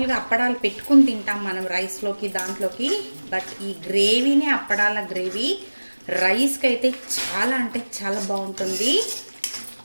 అప్పడాలు పెట్టుకుని తింటాం మనం రైస్లోకి దాంట్లోకి, బట్ ఈ గ్రేవీనే అప్పడాల గ్రేవీ రైస్కి అయితే చాలా అంటే చాలా బాగుంటుంది.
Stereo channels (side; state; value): both; inverted; correlation -1.00